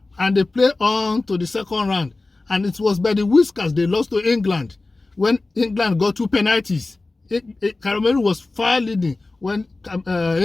and they played on to the second round. And it was by the whiskers they lost to England when England got 2 penalties. Cameroon was far leading when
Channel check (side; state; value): right; quieter; 3.3 dB